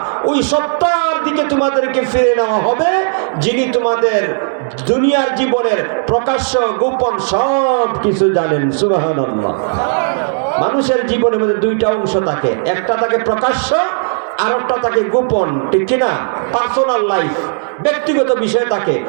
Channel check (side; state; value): left; silent; digital silence